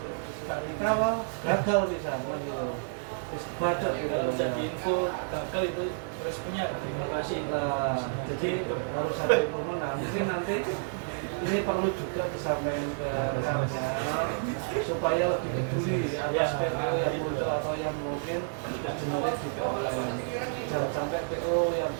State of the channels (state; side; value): silent; left; digital silence